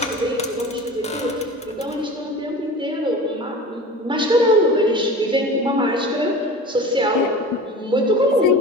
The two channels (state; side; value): normal; both; correlation 0.36